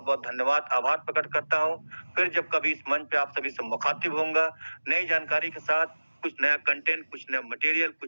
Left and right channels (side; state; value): both; inverted; correlation -1.00